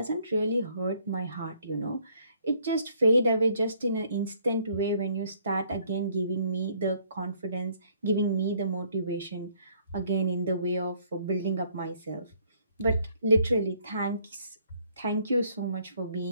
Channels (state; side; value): inverted; both; correlation -0.65